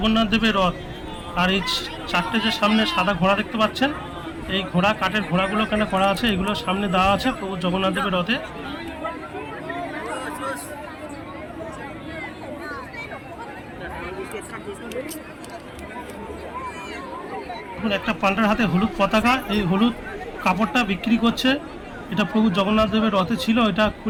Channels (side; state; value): both; identical; correlation 1.00